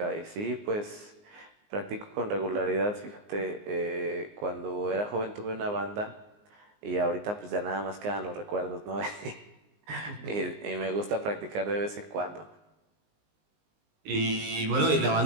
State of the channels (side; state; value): left; late; 19 ms